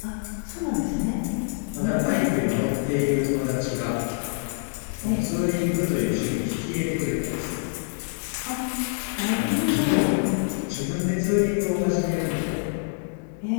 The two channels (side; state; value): right; silent; digital silence